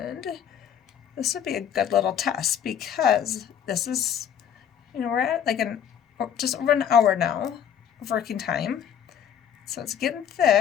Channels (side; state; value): right; quieter; 8.9 dB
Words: this would be a good little test because this is, we're at like just over an hour now of working time, so it's getting